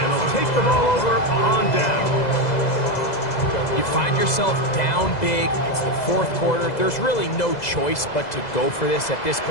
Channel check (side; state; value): right; late; 2.0 ms